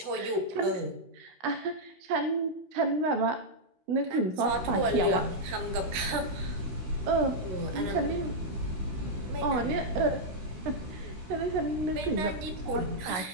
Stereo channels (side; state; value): left; late; 16 ms